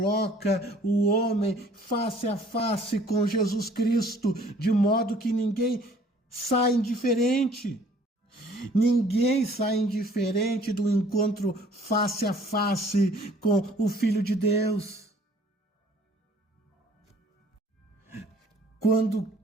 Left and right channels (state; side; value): normal; both; correlation 0.56